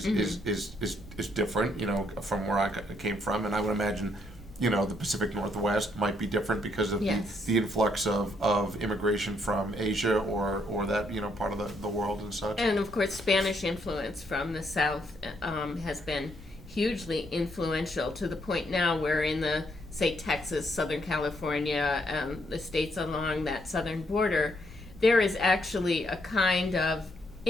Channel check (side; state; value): both; normal; correlation 0.73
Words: different, from where I came from. And I would imagine, the Pacific Northwest might be different because of the influx of immigration from Asia or that, part of the world and such. And of course, Spanish influence from the South has been hugely influential to the point now where in the, say, Texas, Southern California, the states along that southern border, there is actually a kind of